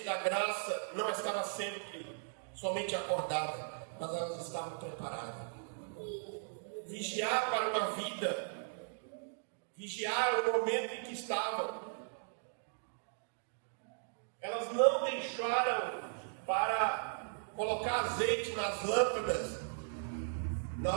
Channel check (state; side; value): silent; left; digital silence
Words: da graça não estava sempre somente acordada, mas elas estavam preparadas. Vigiar para uma vida, vigiar o momento em que estavam. Elas não deixaram para colocar azeite nas lâmpadas